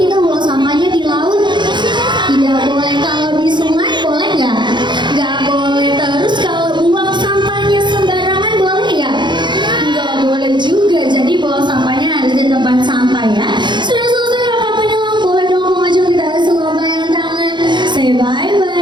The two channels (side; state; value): left; late; 0.22 ms